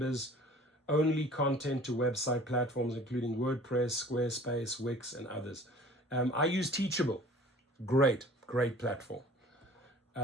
content to website platforms, including WordPress, Squarespace, Wix, and others. I use Teachable. Great platform.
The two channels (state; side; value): normal; both; correlation 0.47